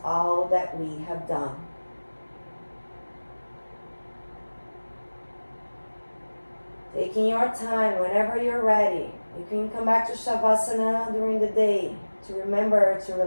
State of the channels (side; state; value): both; inverted; correlation -1.00